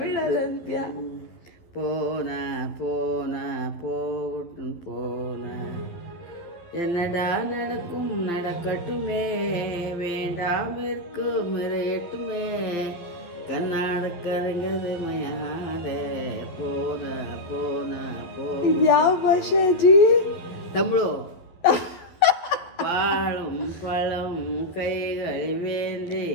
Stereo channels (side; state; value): right; late; 12 ms